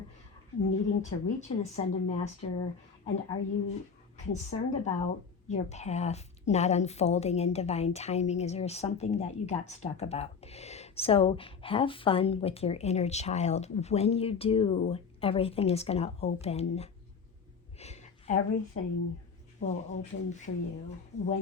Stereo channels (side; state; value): right; quieter; 5.8 dB